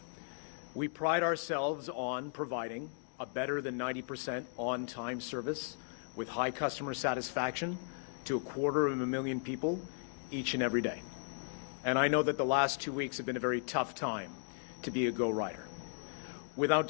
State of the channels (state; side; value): silent; right; digital silence